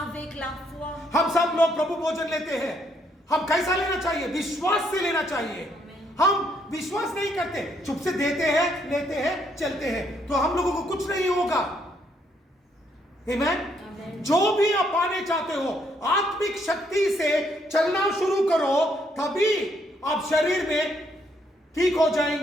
avec la foi. हम सब लोग प्रभु भोजन लेते हैं, हम कैसा लेना चाहिए? विश्वास से लेना चाहिए। हम विश्वास नहीं करते, चुप से देते हैं, लेते हैं, चलते हैं, तो हम लोगों को कुछ नहीं होगा। Amen? जो भी आप पाने चाहते हो, आत्मिक शक्ति से चलना शुरू करो, तभी आप शरीर में ठीक हो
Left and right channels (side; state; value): both; normal; correlation 0.72